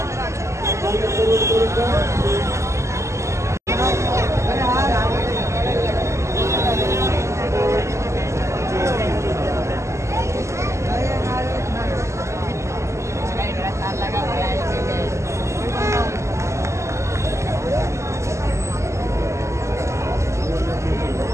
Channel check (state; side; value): late; left; 0.14 ms